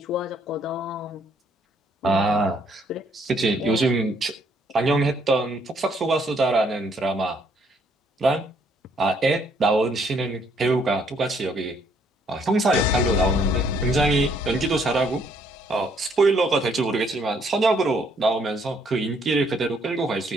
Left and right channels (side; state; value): both; normal; correlation 0.67